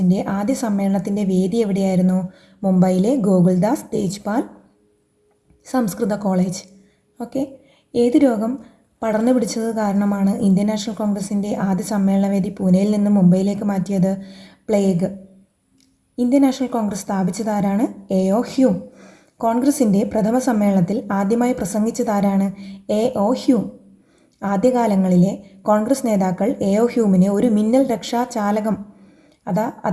ആദ്യ സമ്മേളനത്തിൻ്റെ വേദി എവിടെയായിരുന്നു? മുംബൈയിലെ ഗോകുൽദാസ് തേജ്പാൽ സംസ്കൃത കോളേജ്. ഓക്കെ. ഏത് രോഗം പടർന്നു പിടിച്ചത് കാരണമാണ് ഇന്ത്യൻ നാഷണൽ കോൺഗ്രസിൻ്റെ ആദ്യ സമ്മേളനവേദി പൂനെയിൽ നിന്ന് മുംബൈയിലേക്ക് മാറ്റിയത്? പ്ലേഗ്. ഇന്ത്യൻ നാഷണൽ കോൺഗ്രസ് സ്ഥാപിച്ചതാരാണ്? A.O. ഹ്യൂം. കോൺഗ്രസിൻ്റെ പ്രഥമ സമ്മേളനത്തിൽ ആദ്യമായി പ്രസംഗിച്ചതാരാണ്? A.O. ഹ്യൂം. ആദ്യകാലങ്ങളിലെ കോൺഗ്രസ് നേതാക്കൾ A.O. ഹ്യൂമിനെ ഒരു മിന്നൽ രക്ഷാ ചാലകം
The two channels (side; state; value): both; identical; correlation 1.00